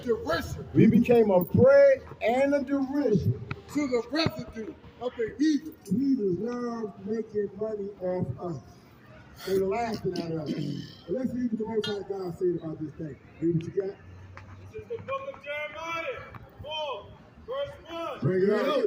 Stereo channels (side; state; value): both; identical; correlation 1.00